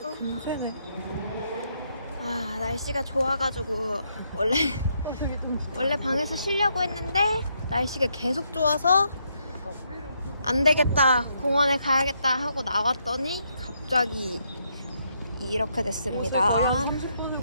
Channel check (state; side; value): inverted; both; correlation -0.76